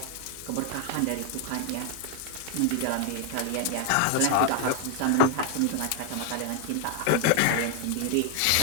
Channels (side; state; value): both; different; correlation 0.00